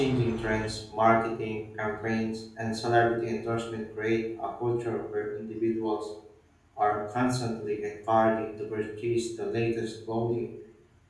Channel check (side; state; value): both; identical; correlation 1.00